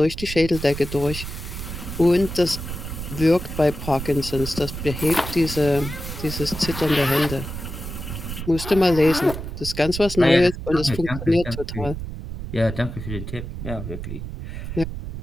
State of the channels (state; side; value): noise; right; rumble, 8 dB below the sound